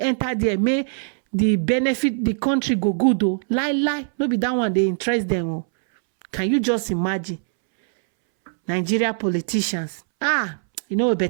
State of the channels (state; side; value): silent; left; 64 dB below the other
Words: there, may the benefit the country go good though. Lie. No be that one they interest them. Oh. Can you just imagine? Nigeria politicians.